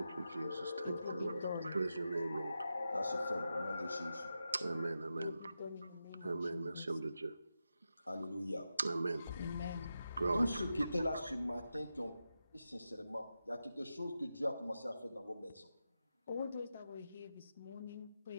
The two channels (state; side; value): inverted; both; correlation -0.89